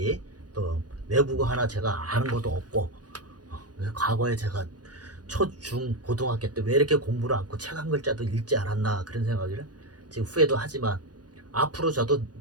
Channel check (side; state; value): left; late; 0.69 ms